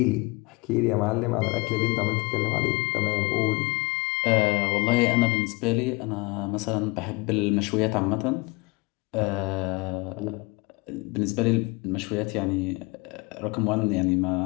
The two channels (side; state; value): right; quieter; 25.7 dB